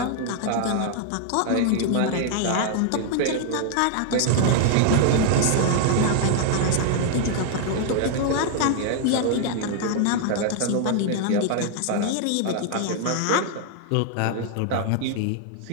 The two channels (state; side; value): different; both; correlation 0.00